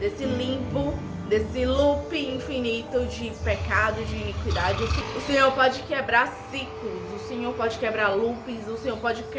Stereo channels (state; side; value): identical; both; correlation 1.00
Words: limbo, desse loop infinito de pecado, de iniquidade. O Senhor pode quebrar ciclos, o Senhor pode quebrar loops, o Senhor pode